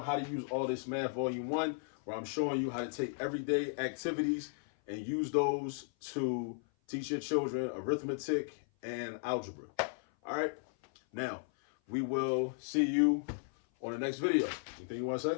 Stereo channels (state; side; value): silent; right; 54 dB below the other